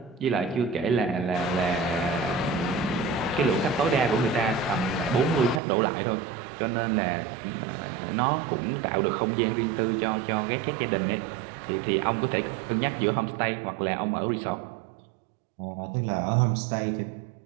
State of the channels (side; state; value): left; drops out; at 5.6 s